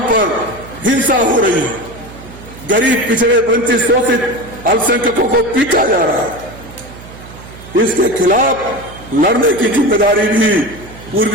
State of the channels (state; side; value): noise; right; hum, 17 dB below the sound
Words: पर हिंसा हो रही है। गरीब, पिछड़े, वंचित, शोषित अल्पसंख्यकों को पीटा जा रहा है। इसके खिलाफ लड़ने की जिम्मेदारी भी